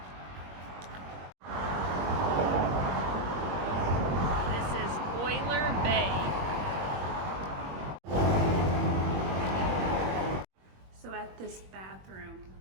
So at this bathroom,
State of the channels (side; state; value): left; late; 21 ms